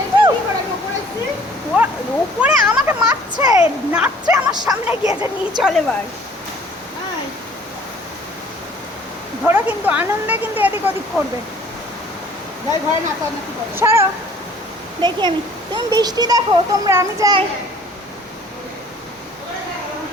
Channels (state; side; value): normal; both; correlation 0.54